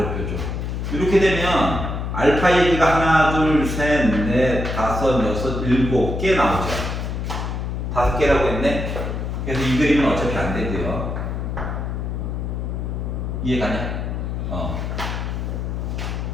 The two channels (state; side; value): noise; left; hum, 3 dB below the sound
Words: 뾰족. 이렇게 되면 알파 얘기가 하나, 둘, 셋, 넷, 다섯, 여섯, 일곱 개 나오죠. 5개라고 했네. 그래서 이 그림은 어차피 안 되고요. 이해가냐?